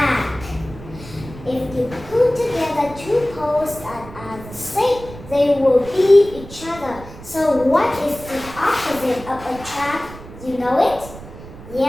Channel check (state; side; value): noise; right; rumble, 15 dB below the sound